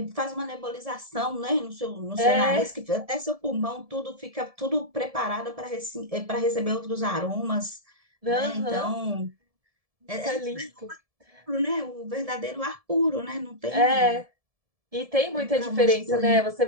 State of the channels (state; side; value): late; left; 1.7 ms